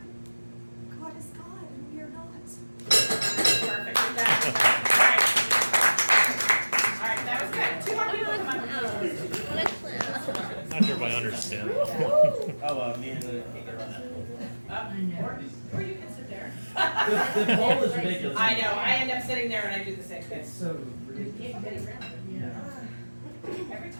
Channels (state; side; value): inverted; both; correlation -1.00